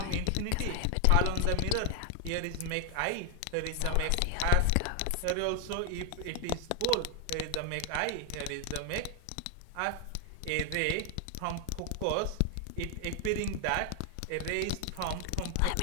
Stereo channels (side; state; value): both; different; correlation 0.00